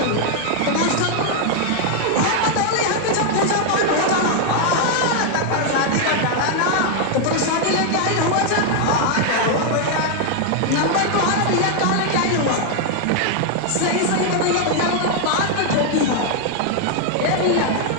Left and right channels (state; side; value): different; both; correlation 0.00